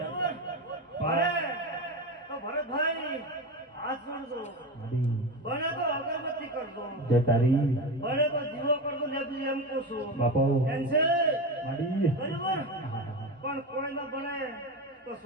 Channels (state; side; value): normal; both; correlation 0.22